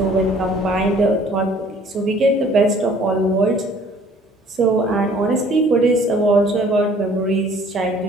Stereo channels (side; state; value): both; normal; correlation 0.55